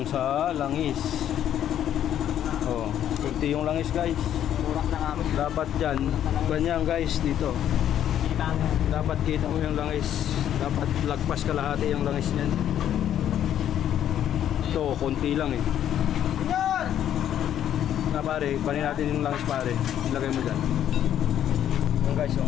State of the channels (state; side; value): quieter; right; 10.6 dB